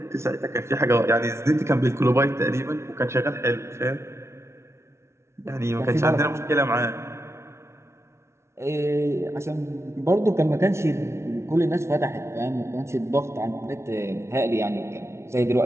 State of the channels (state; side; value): late; left; 0.13 ms